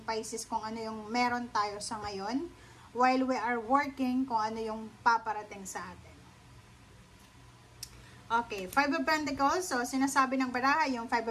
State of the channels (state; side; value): identical; both; correlation 1.00